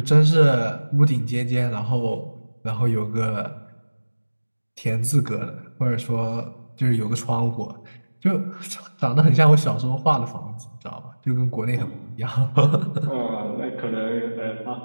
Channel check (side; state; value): both; inverted; correlation -1.00